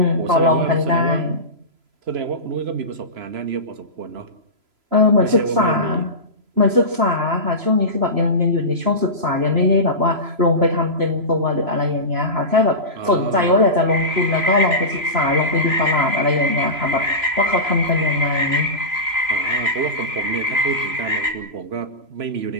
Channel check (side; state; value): left; late; 3.0 ms